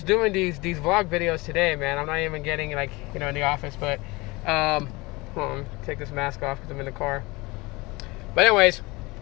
doing these vlog videos today, man. I'm not even getting in the office, but hold on, take this mask off because I'm in the car. But anyways,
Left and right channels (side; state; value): right; quieter; 23.7 dB